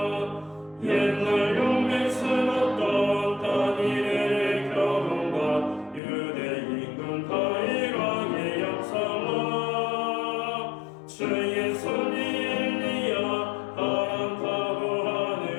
옛날 용맹스럽던 다니엘의 결혼과 유대인군 다윗왕의 역사와 주의 손이 엘리야 바람 타고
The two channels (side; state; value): right; drops out; at 6.0 s